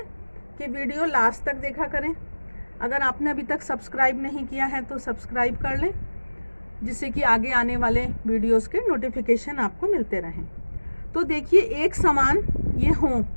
कि वीडियो लास्ट तक देखा करें। अगर आपने अभी तक सब्सक्राइब नहीं किया है तो सब्सक्राइब कर लें, जिससे कि आगे आने वाले वीडियोस के नोटिफिकेशन आपको मिलते रहें। तो देखिए, एक समान ये हों,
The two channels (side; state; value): both; inverted; correlation -1.00